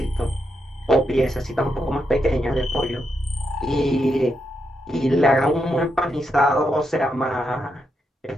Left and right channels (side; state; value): both; normal; correlation 0.82